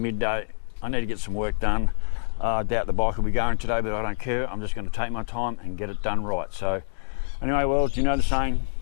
I need to get some work done. I doubt the bike will be going today, but I don't care. I'm just going to take my time and get it done right. So anyway, well, you know the saying,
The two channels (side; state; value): right; silent; digital silence